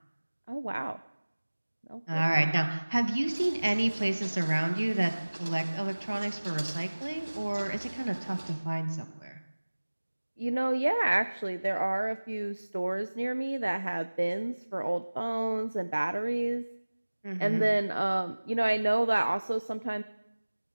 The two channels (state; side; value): inverted; both; correlation -1.00